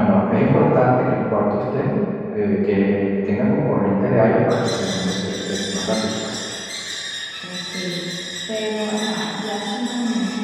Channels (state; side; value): identical; both; correlation 1.00